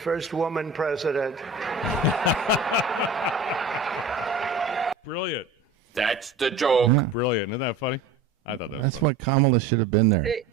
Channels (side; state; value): left; quieter; 3.9 dB